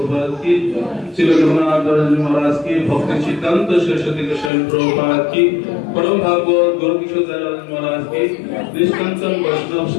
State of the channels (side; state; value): right; drops out; at 4.5 s